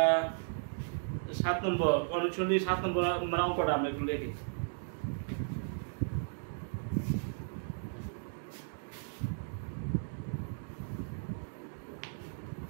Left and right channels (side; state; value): left; silent; digital silence